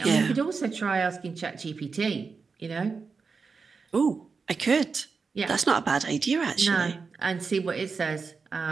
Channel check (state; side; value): quieter; left; 4.9 dB